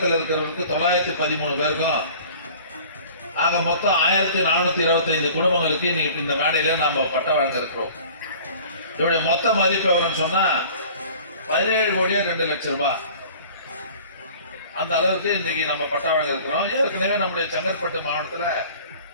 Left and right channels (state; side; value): inverted; both; correlation -0.46